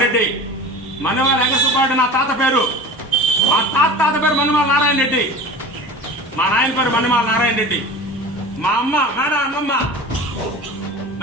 Reddy. Mannemala Venkata Subba Reddy నా తాత పేరు. మా తాత పేరు మన్నెమాల నారాయణ రెడ్డి. మా నాయన పేరు మన్నెమాల నారాయణ రెడ్డి. మా అమ్మ మేడం అమ్మమ్మ,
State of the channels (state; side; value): normal; both; correlation 0.36